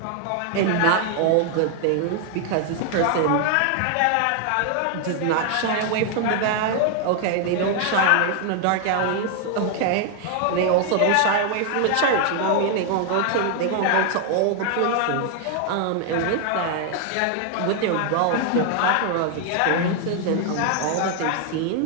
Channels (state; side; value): different; both; correlation 0.00